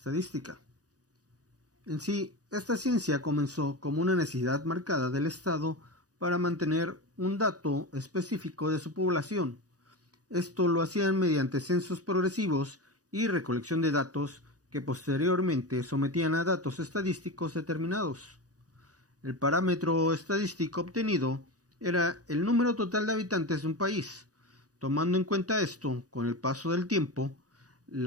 En sí, esta ciencia comenzó como una necesidad marcada del Estado para mantener un dato específico de su población. Esto lo hacían mediante censos progresivos y recolección de datos que posteriormente sometían a datos estadísticos determinados. El parámetro estadístico obtenido era el número total de habitantes de un país. Tomando en cuenta esto, con el paso del tiempo,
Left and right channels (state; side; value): late; left; 0.67 ms